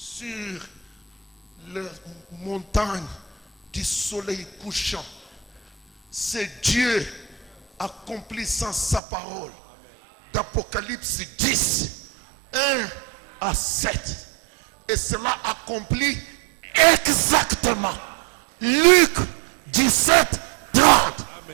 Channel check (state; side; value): drops out; left; at 9.0 s